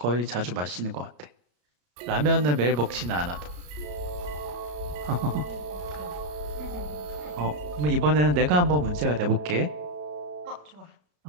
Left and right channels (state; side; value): late; left; 34 ms